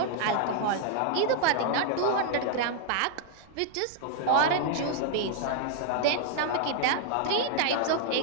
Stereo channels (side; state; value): both; different; correlation -0.01